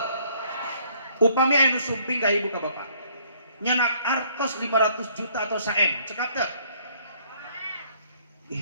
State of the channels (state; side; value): inverted; both; correlation -0.62